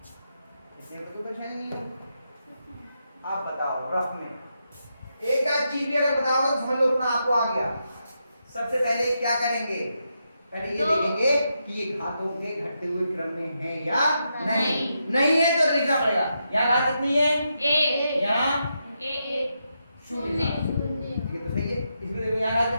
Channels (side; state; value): both; inverted; correlation -0.84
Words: इससे तो कुछ है नहीं आप बताओ रफ में एक आध चीज भी अगर बताओगे तो समझ लो उतना आपको आ गया सबसे पहले क्या करेंगे पहले ये देखेंगे कि ये घातों के घटते हुए क्रम में है या नहीं नहीं है तो लिखना पड़ेगा यहाँ घात कितनी है 1 यहाँ 1 शून्य 0 ये तो सही है इसमें देखो यहाँ घात